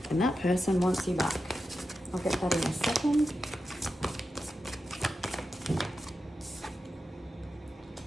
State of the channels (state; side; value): normal; both; correlation 0.90